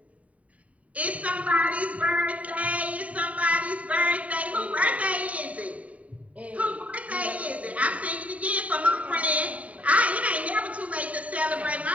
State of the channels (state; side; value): late; left; 0.068 ms